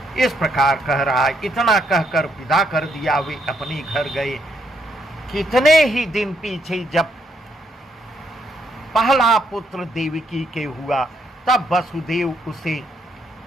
इस प्रकार कह रहा है। इतना कहकर विदा कर दिया। वे अपने घर गए। कितने ही दिन पीछे जब पहला पुत्र देवकी के हुआ, तब वसुदेव उसे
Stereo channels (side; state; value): both; normal; correlation 0.75